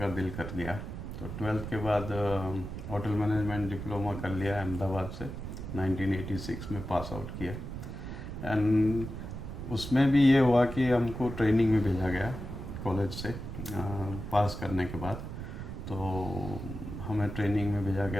दिल कर लिया। तो 12th के बाद होटल मैनेजमेंट डिप्लोमा कर लिया अहमदाबाद से, 1986 में पास आउट किया। एंड उसमें भी ये हुआ कि हमको ट्रेनिंग में भेजा गया कॉलेज से पास करने के बाद। तो हमें ट्रेनिंग में भेजा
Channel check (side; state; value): right; noise; rumble, 8 dB below the sound